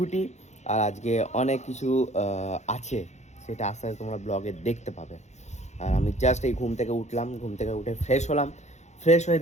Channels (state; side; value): late; right; 0.33 ms